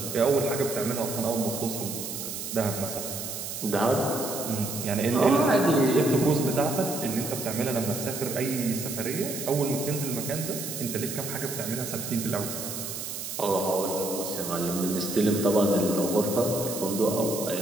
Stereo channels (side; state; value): right; noise; hiss, 6 dB below the sound